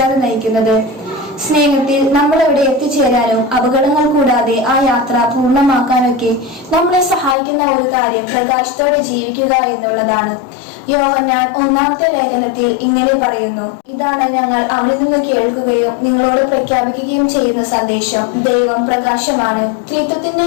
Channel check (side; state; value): right; drops out; at 7.4 s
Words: നയിക്കുന്നത്. സ്നേഹത്തിൽ നമ്മൾ എവിടെ എത്തിച്ചേരാനും അപകടങ്ങൾ കൂടാതെ ആ യാത്ര പൂർണ്ണമാക്കാനൊക്കെ നമ്മളെ സഹായിക്കുന്ന ഒരു കാര്യം പ്രകാശത്തോടെ ജീവിക്കുക എന്നുള്ളതാണ്. യോഹന്നാൻ 1-ാമത്തെ ലേഖനത്തിൽ ഇങ്ങനെ പറയുന്നു: ഇതാണ് ഞങ്ങൾ അവനിൽ നിന്ന് കേൾക്കുകയും നിങ്ങളോട് പ്രഖ്യാപിക്കുകയും ചെയ്യുന്ന സന്ദേശം ദൈവം പ്രകാശമാണ്.